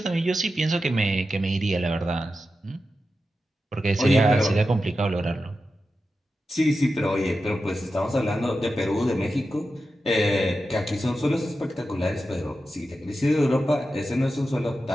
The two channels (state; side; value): normal; both; correlation 0.91